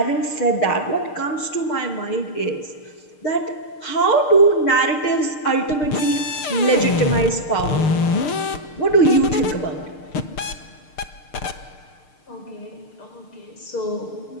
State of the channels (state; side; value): late; right; 6.6 ms